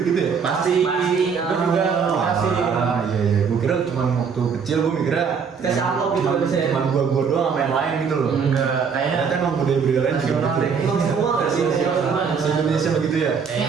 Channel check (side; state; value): left; quieter; 6.1 dB